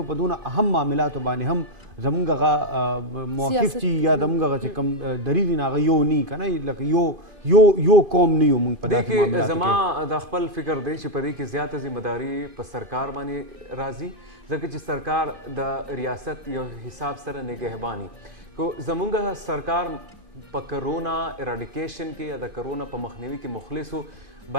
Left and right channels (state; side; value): late; left; 2.5 ms